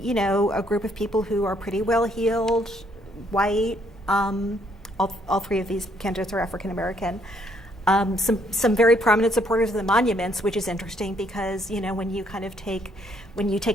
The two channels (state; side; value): normal; both; correlation 0.68